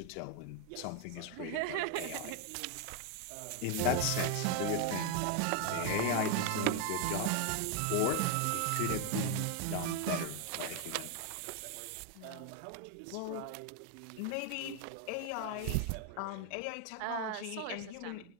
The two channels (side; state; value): both; different; correlation 0.01